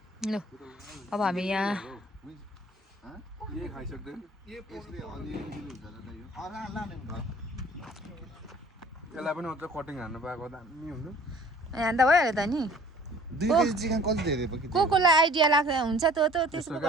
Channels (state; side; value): normal; both; correlation 0.51